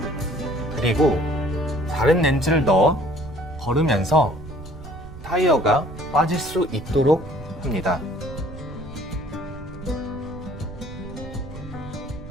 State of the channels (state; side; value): noise; right; rumble, 14 dB below the sound